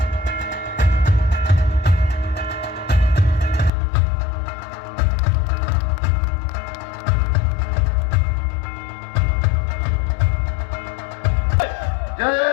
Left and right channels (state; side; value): drops out; right; at 3.7 s